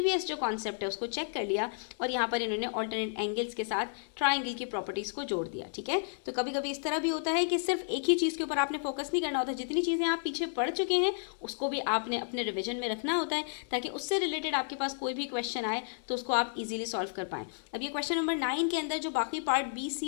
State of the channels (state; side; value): silent; right; digital silence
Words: जो कॉन्सेप्ट है उसको चेक कर लिया और यहाँ पर इन्होंने ऑल्टरनेट एंगल्स के साथ ट्राइंगल की प्रॉपर्टीज़ को जोड़ दिया, ठीक है। तो कभी कभी इस तरह भी होता है कि सिर्फ एक ही चीज़ के ऊपर आपने फोकस नहीं करना होता, जितनी चीज़ें आप पीछे पढ़ चुके हैं उसको भी आपने अपने रिविजन में रखना होता है ताकि उससे रिलेटेड आपके पास कोई भी क्वेश्चन आए तो उसको आप इजीली सॉल्व कर पाएँ। अब ये क्वेश्चन नंबर 9 के अंदर जो बाकी पार्ट बी,